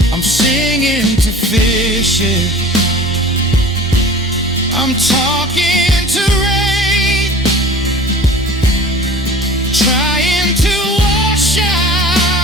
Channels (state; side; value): normal; both; correlation 0.42